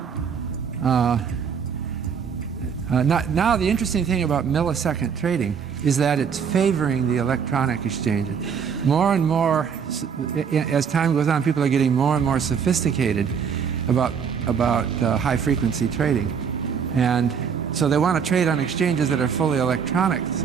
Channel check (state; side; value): quieter; left; 6.8 dB